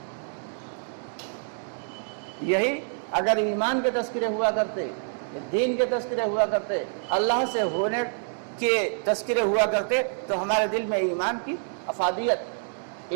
یہی اگر ایمان کے تذکرے ہوا کرتے، دین کے تذکرے ہوا کرتے، اللہ سے ہونے کے تذکرے ہوا کرتے، تو ہمارے دل میں ایمان کی افادیت،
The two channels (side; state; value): left; silent; digital silence